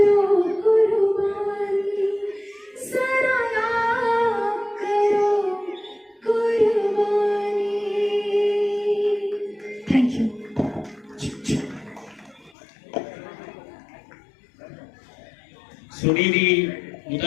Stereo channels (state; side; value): drops out; right; at 12.5 s